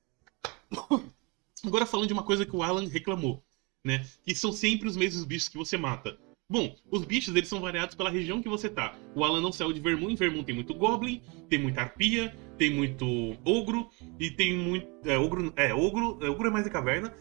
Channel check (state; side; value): quieter; left; 28.2 dB